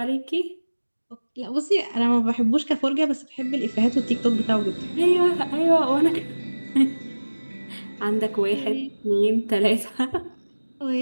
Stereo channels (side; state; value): both; inverted; correlation -1.00